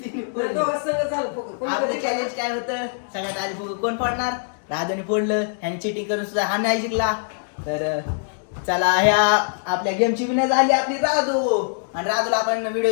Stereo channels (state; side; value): silent; right; 63 dB below the other